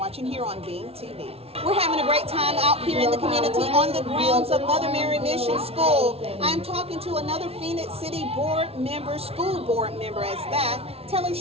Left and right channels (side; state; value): left; late; 0.29 ms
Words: here on Bean TV. We're having a great time out here in the community on the grounds of Mother Mary Mission School. I'm talking to another Phoenix City board member, school board member as that. Tell us